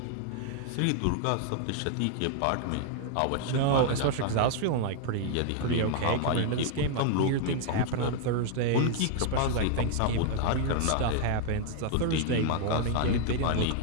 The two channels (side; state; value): both; different; correlation 0.00